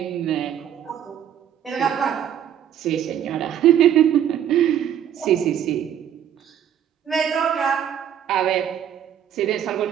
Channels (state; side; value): quieter; left; 9.8 dB